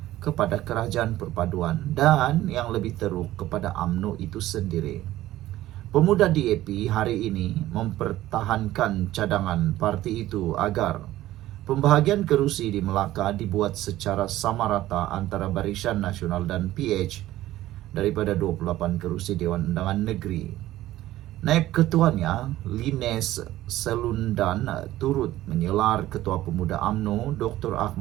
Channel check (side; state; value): left; quieter; 15.1 dB